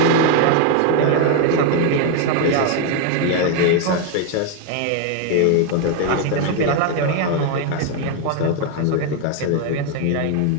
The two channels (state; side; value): different; both; correlation 0.01